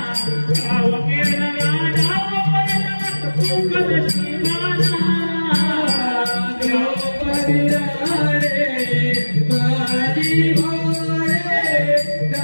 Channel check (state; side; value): inverted; both; correlation -1.00